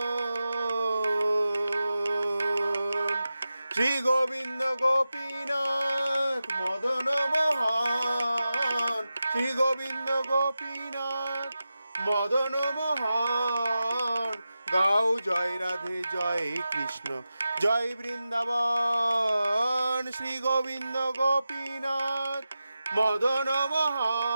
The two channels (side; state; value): both; inverted; correlation -0.93